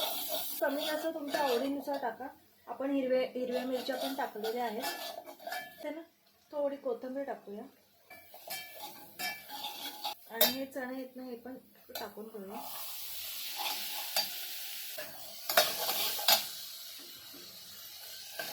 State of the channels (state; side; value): identical; both; correlation 1.00